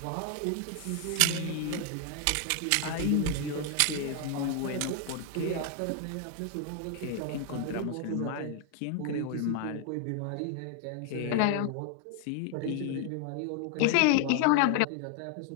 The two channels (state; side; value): different; both; correlation 0.00